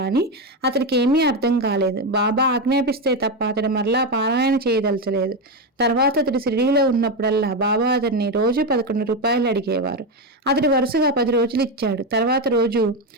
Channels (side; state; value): both; normal; correlation 0.11